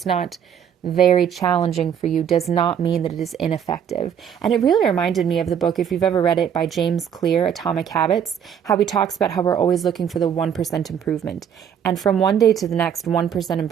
not very challenging for you, does not mean that it is ineffective. And it really reminded me of the book, if you've ever read it, by James Clear, Atomic Habits, how he talks about how we're always looking for the 1% improvement. And from one day to the next, 1%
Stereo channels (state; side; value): quieter; left; 8.4 dB